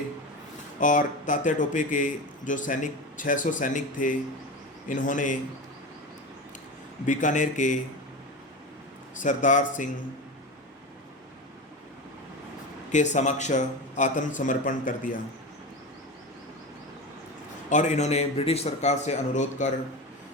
और तात्या टोपे के जो 600 सैनिक थे, इन्होंने बीकानेर के सरदार सिंह के समक्ष आत्मसमर्पण कर दिया और इन्होंने ब्रिटिश सरकार से अनुरोध कर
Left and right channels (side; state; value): both; normal; correlation 0.25